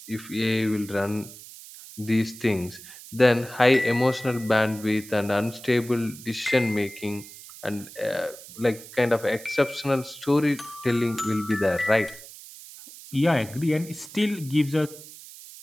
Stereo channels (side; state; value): right; noise; hiss, 17 dB below the sound